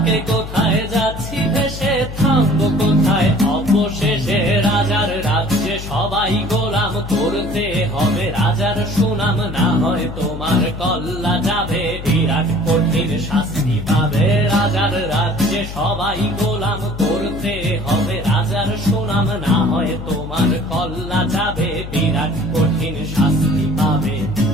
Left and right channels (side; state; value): left; noise; hum, 10 dB below the sound